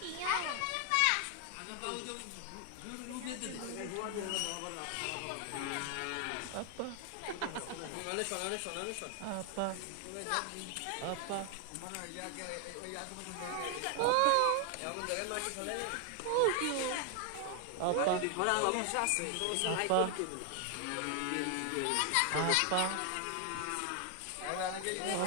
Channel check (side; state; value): both; different; correlation 0.00